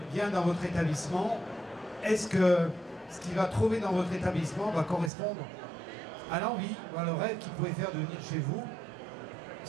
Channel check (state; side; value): drops out; left; at 5.1 s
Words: vient dans votre établissement, est-ce que ce qu'il va trouver dans votre établissement va correspondre à l'envie, à le rêve qu'il pouvait faire de venir chez vous,